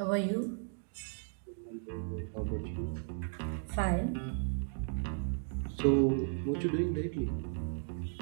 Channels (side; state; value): left; silent; 54 dB below the other